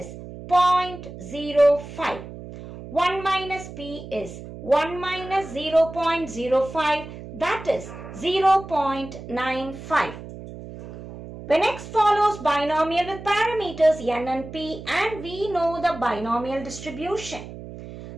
0.05. 1 minus P is 1 minus 0.05, that is 0.95. When X follows binomial with parameters N and P and we know the binomial distribution.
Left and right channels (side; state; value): right; noise; hum, 13 dB below the sound